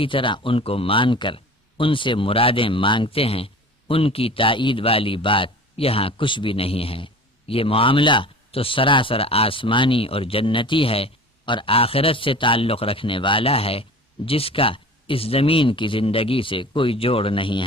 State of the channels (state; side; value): normal; both; correlation 0.39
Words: طرح ان کو مان کر ان سے مرادیں مانگتے ہیں، ان کی تائید والی بات یہاں کچھ بھی نہیں ہے۔ یہ معاملہ تو سراسر آسمانی اور جنتی ہے اور آخرت سے تعلق رکھنے والا ہے، جس کا اس زمین کی زندگی سے کوئی جوڑ نہیں